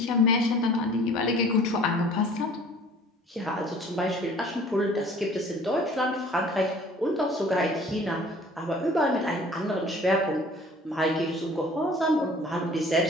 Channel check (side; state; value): both; normal; correlation 0.50